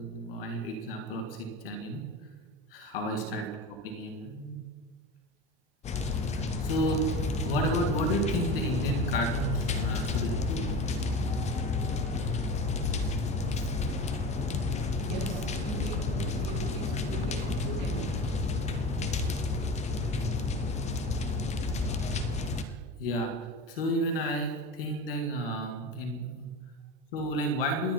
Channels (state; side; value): normal; both; correlation 0.30